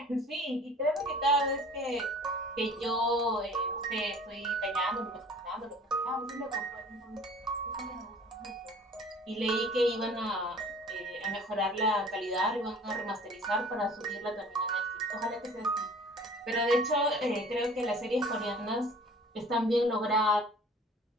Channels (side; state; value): both; normal; correlation 0.47